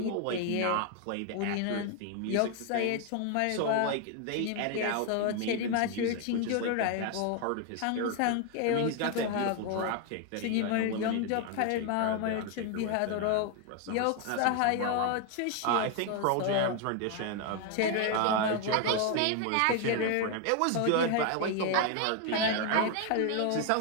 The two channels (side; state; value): both; different; correlation 0.01